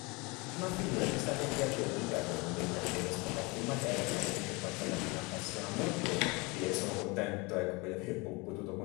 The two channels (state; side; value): quieter; right; 26.9 dB